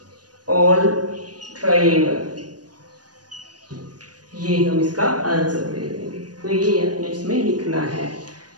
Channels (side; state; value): left; late; 0.69 ms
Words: all triangle, ये हम इसका आंसर दे देंगे। तो ये हमें इसमें लिखना है